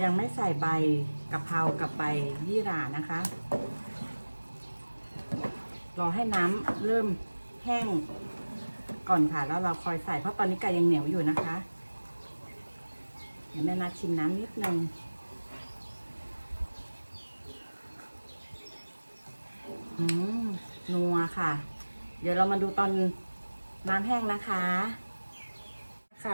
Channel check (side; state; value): both; inverted; correlation -1.00